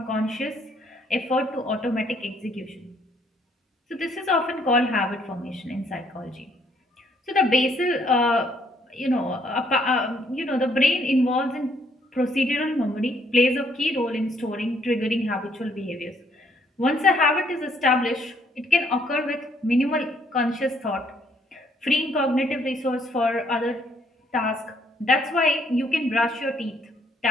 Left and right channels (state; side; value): normal; both; correlation 0.67